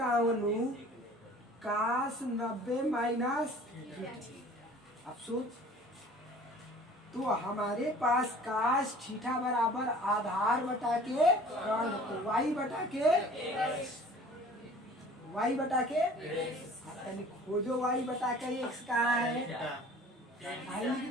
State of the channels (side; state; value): both; normal; correlation 0.47